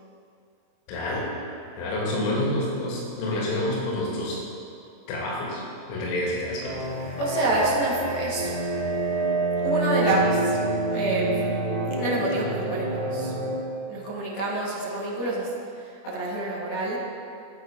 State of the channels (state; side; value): late; right; 25 ms